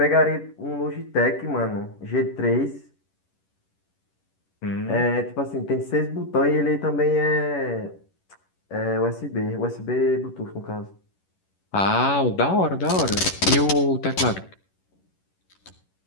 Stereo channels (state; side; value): late; right; 11 ms